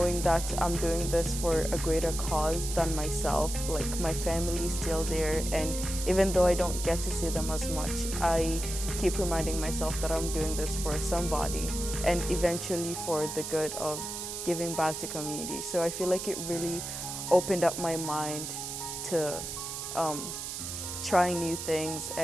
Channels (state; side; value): noise; right; hiss, 6 dB below the sound